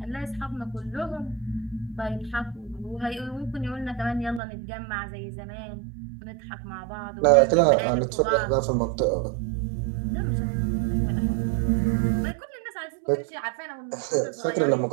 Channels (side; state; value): left; drops out; at 4.4 s